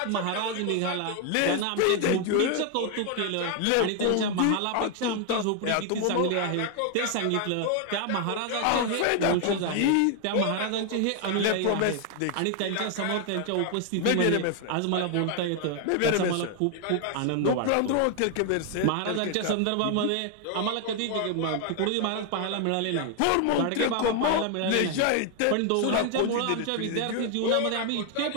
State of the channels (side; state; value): both; different; correlation 0.00